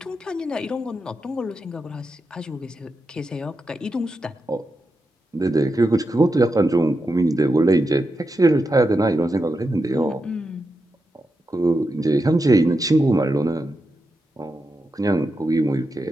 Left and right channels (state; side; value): normal; both; correlation 0.87